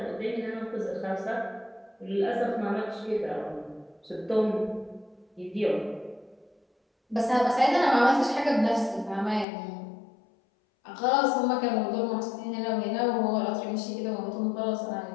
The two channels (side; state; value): right; drops out; at 9.5 s